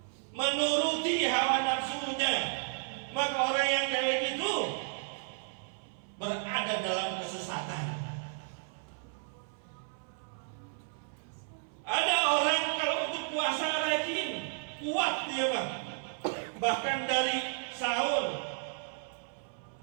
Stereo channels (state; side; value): silent; left; 56 dB below the other